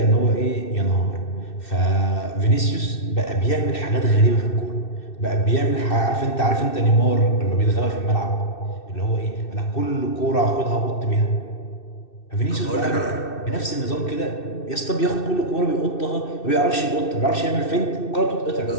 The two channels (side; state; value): right; late; 2.6 ms